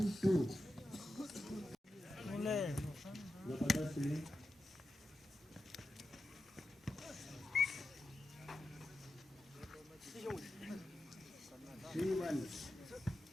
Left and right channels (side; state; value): both; normal; correlation 0.90